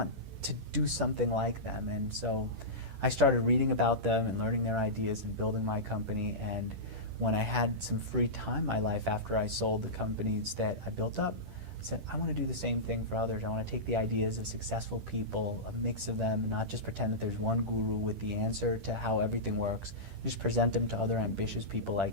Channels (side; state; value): left; late; 10 ms